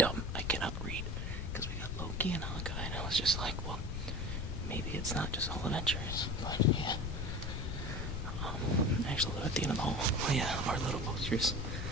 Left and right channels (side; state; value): left; noise; rumble, 3 dB below the sound